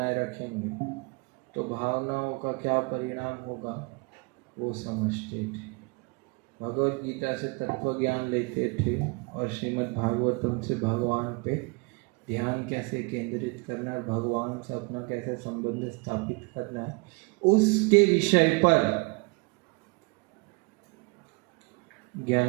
रखेंगे तो भावनाओं का क्या परिणाम होगा वो समझते थे। भगवत गीता से तत्व ज्ञान लेते थे और श्रीमद् भागवतम से भगवान पे ध्यान कैसे केंद्रित करना है, भगवान से अपना कैसे संबंध स्थापित करना है, उसके विषय पर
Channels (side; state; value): left; quieter; 29.7 dB